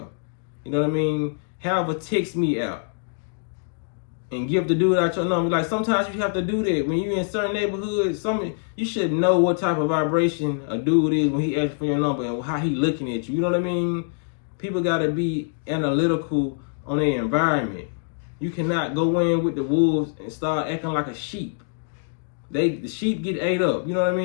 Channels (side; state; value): right; silent; 62 dB below the other